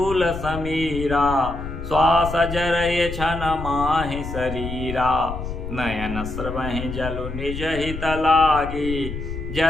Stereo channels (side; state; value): left; noise; rumble, 8 dB below the sound